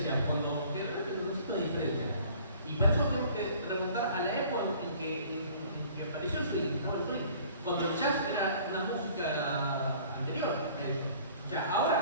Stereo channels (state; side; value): inverted; both; correlation -0.52